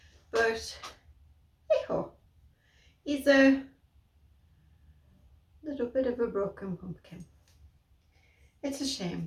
But, hey-ho. He's a little bit of a broken pumpkin. It's a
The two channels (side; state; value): both; identical; correlation 1.00